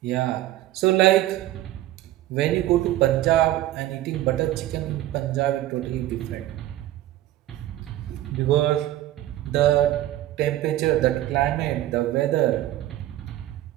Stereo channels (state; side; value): quieter; left; 14.5 dB